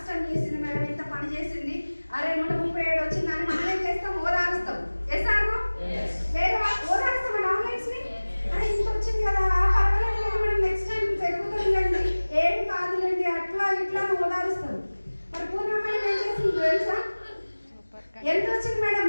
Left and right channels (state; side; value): inverted; both; correlation -1.00